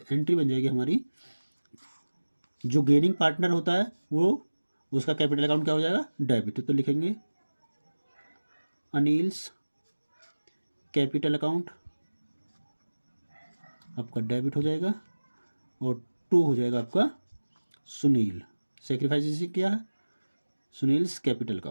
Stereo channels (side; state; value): both; inverted; correlation -1.00